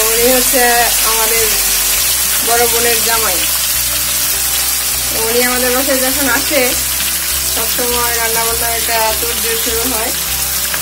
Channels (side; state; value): both; identical; correlation 1.00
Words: উনি হচ্ছে আমাদের বড় বোনের জামাই। উনি আমাদের বাসায় যখন আসে সবসময় রান্না বান্না একটা তোড়জোড় শুরু হয়।